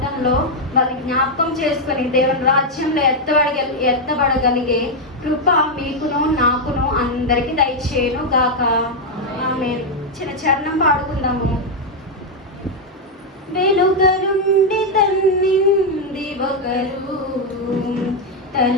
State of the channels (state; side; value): normal; both; correlation 0.01